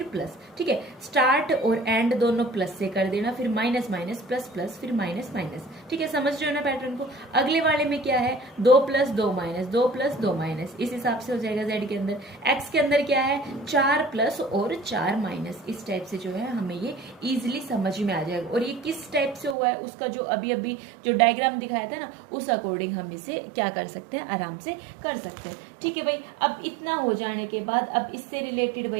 प्लस, ठीक है। स्टार्ट और एंड दोनों प्लस से कर देना, फिर माइनस माइनस प्लस प्लस फिर माइनस माइनस, ठीक है। समझ रहे हो ना पैटर्न को। अगले वाले में क्या है, 2 प्लस 2 माइनस, 2 प्लस 2 माइनस, इस हिसाब से हो जाएगा जेड के अंदर। एक्स के अंदर क्या है, 4 प्लस और 4 माइनस, इस टाइप से जो है हमें ये इजिली समझ में आ जाएगा। और ये किस टाइप से हुआ है, उसका जो अभी अभी जो डायग्राम दिखाया था ना, उस अकॉर्डिंग हम इसे क्या कर सकते हैं, आराम से कर सकते हैं, ठीक है भाई। अब इतना हो जाने के बाद अब इससे रिलेटेड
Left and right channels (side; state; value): left; drops out; at 19.6 s